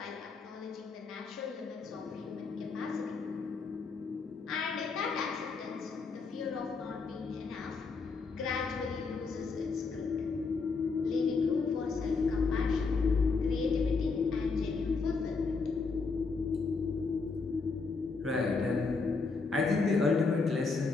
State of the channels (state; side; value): quieter; right; 4.5 dB